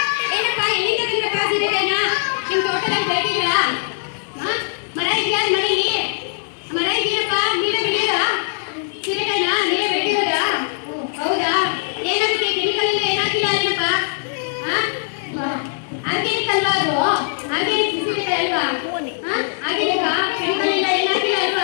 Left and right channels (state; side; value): silent; right; digital silence